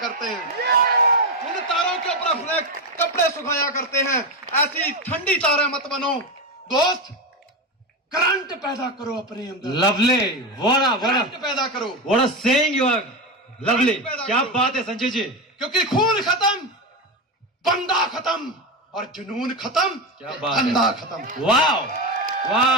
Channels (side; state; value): both; normal; correlation 0.14